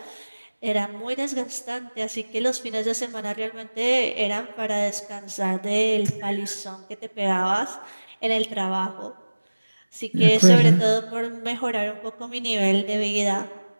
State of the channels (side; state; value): both; inverted; correlation -1.00